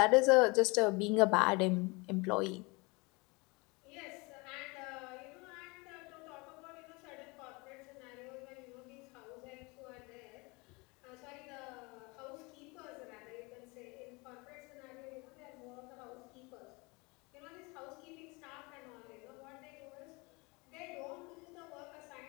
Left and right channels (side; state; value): right; quieter; 26.8 dB